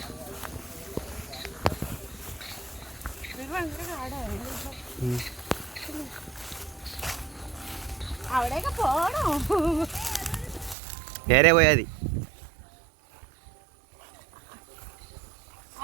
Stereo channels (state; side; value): drops out; left; at 10.8 s